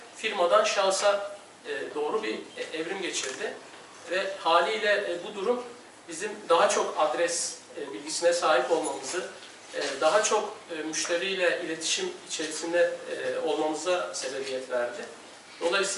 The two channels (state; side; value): identical; both; correlation 1.00